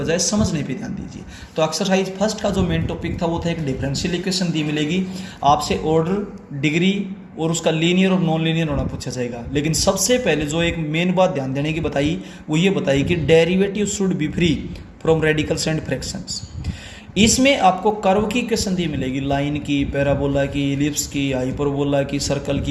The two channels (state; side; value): identical; both; correlation 1.00